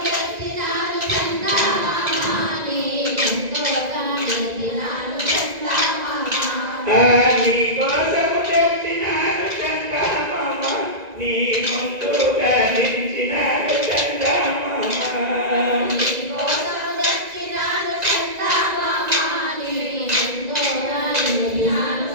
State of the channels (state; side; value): late; left; 1.9 ms